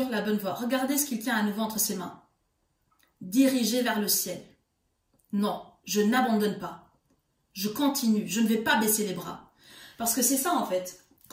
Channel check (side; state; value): both; identical; correlation 1.00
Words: la bonne voie. Regardez ce qu'il tient à nouveau entre ses mains. Dirigez vers le ciel. Non, je n'abandonne pas. Je continue, je ne vais pas baisser les bras. Parce que c'est ça en fait.